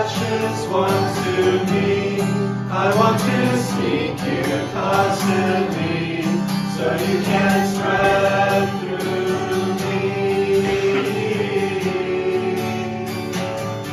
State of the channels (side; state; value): both; identical; correlation 1.00